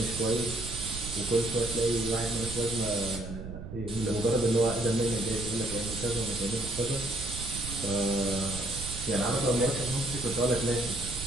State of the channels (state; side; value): noise; right; rumble, 9 dB below the sound